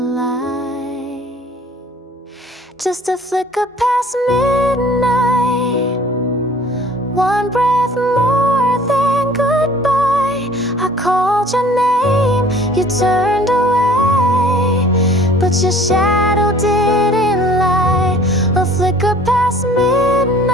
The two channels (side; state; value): both; normal; correlation 0.51